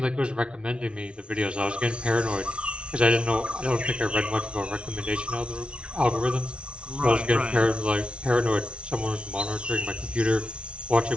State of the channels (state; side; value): late; left; 0.059 ms